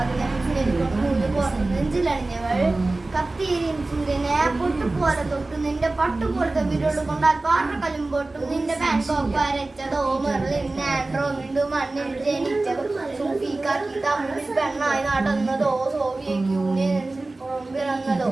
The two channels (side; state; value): left; quieter; 3.1 dB